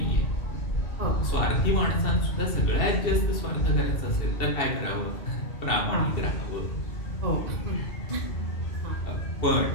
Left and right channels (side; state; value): right; late; 2.7 ms